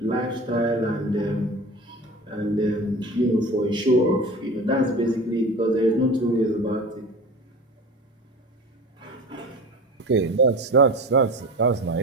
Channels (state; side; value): normal; both; correlation 0.35